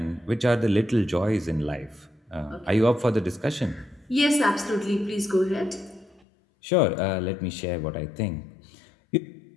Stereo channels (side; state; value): right; drops out; at 6.2 s